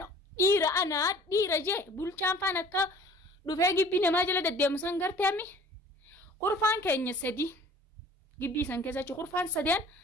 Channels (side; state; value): both; normal; correlation 0.49